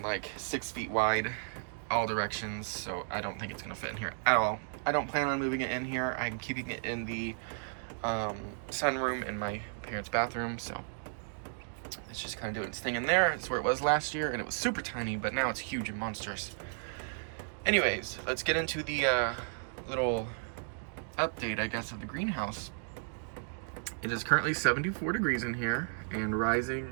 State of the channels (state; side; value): silent; left; digital silence